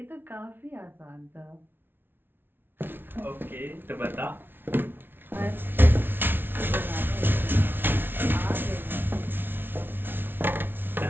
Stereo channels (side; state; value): left; late; 0.10 ms